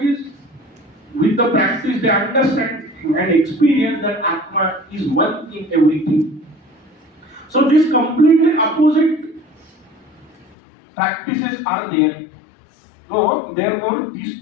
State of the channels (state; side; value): drops out; right; at 10.6 s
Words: with the practice, they understand and experience that Atma is one in everything. So these completely opposite practices are there. So therefore these